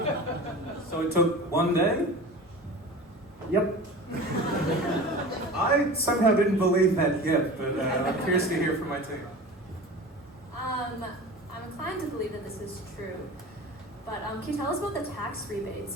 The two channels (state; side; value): normal; both; correlation 0.35